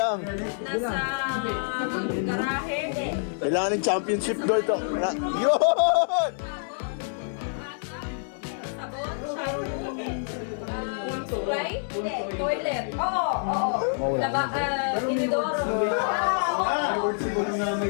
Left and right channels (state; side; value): silent; right; digital silence